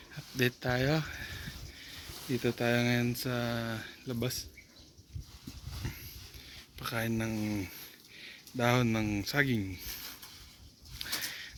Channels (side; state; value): both; identical; correlation 1.00